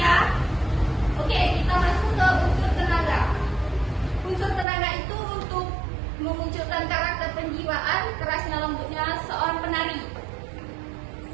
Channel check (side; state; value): left; drops out; at 4.7 s